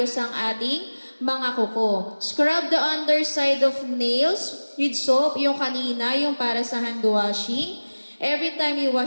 ang ating mga kuko. Scrub the underside of nails with soap, yung kanina, yung para sa hand washing, every time you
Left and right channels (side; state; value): both; inverted; correlation -1.00